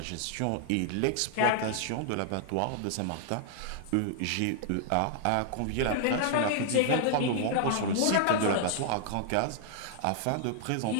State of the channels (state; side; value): different; both; correlation 0.00